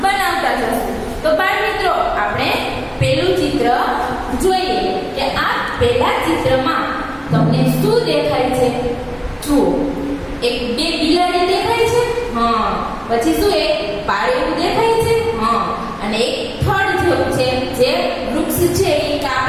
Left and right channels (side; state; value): both; identical; correlation 1.00